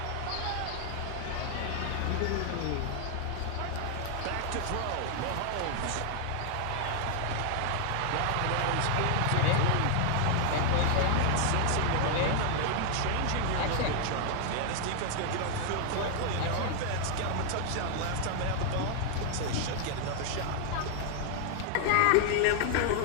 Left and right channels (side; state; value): both; different; correlation 0.00